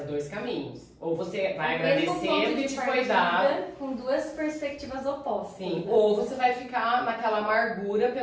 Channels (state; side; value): identical; both; correlation 1.00